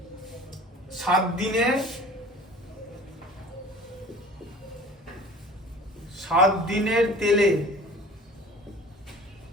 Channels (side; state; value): both; normal; correlation 0.45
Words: 7 দিনে 7 দিনের তেলে